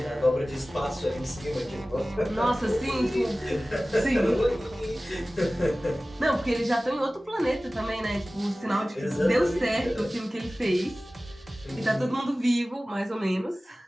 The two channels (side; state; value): both; normal; correlation 0.97